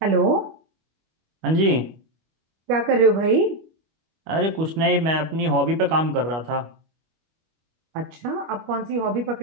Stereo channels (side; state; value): left; late; 25 ms